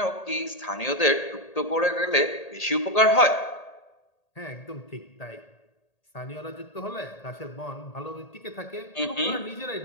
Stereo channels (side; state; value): right; late; 1.8 ms